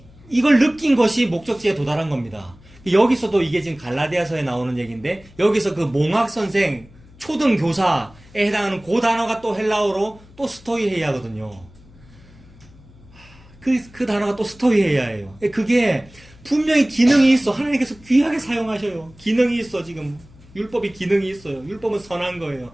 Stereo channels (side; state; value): left; noise; hum, 24 dB below the sound